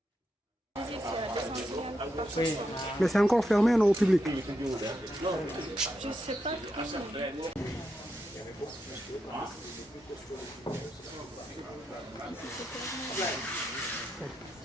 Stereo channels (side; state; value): both; normal; correlation 0.84